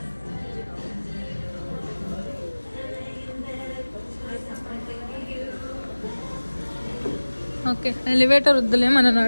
ఓకే, ఎలివేటర్ వద్దులే, మనం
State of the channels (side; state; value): both; inverted; correlation -1.00